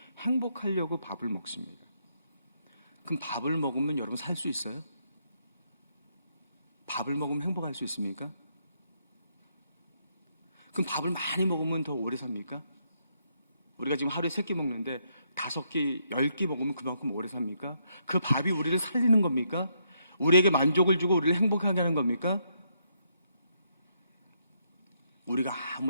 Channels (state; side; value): inverted; both; correlation -0.76